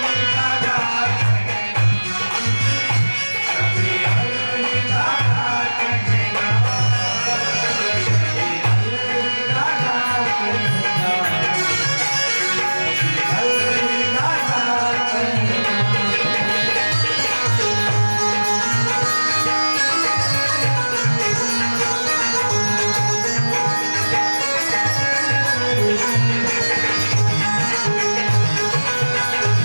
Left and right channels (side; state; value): both; inverted; correlation -1.00